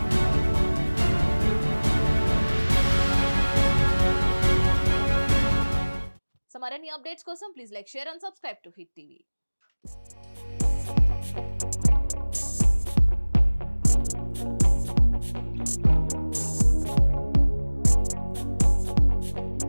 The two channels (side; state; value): both; inverted; correlation -1.00